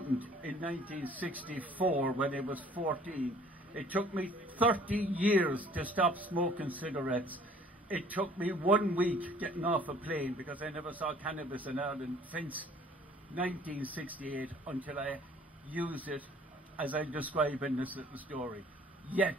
in 1964 when I was 14. It took me 30 years to stop smoking cigarettes. It took me 1 week getting off a plane because I never saw cannabis in Ireland since 1968 until I used it as I describe in this little story. Yet,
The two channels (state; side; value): normal; both; correlation 0.54